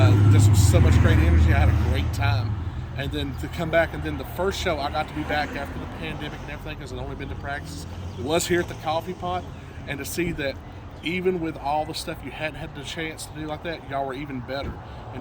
This was so much great energy. I had a great time. And then to come back, and then the first show I got to be back after the pandemic and everything, because I'd only been to practice, was here at the Coffee Pot, and to see that even with all the stuff you hadn't had the chance to do like that, y'all were even better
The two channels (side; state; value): both; identical; correlation 1.00